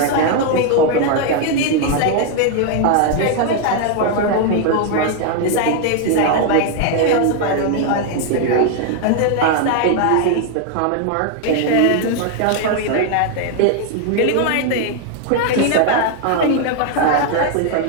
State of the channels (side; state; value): both; different; correlation 0.00